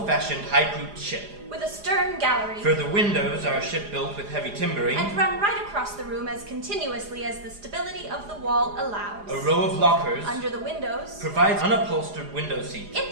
high-pooped ship. with a stern gallery, For the windows are a ship built with heavy timbering, and run right across the room as continuously as the stability of the wall allows. a row of lockers Under the windows, provides unupholstered window seats,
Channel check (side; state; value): left; late; 4.9 ms